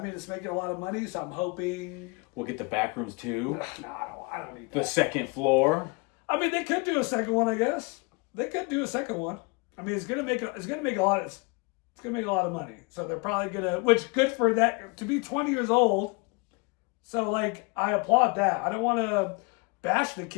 it's making a lot of money, so I'm hoping we'll get the Backrooms too. No, I don't need that. The second floor. They could do a second one, I guess. They could do a second one. It's gonna make a lot of money. So they're probably gonna, which good for that to be 20 years old. So, like, I applaud that. I don't want to bash the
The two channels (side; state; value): right; quieter; 29.8 dB